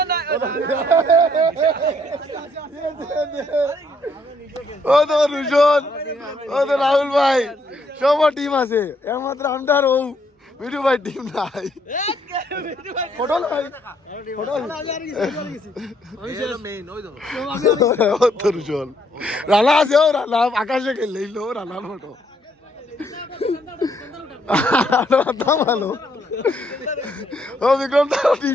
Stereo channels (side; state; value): both; normal; correlation 0.70